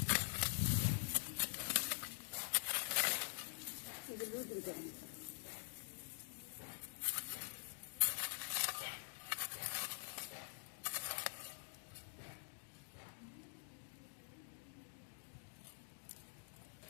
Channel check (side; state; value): right; silent; digital silence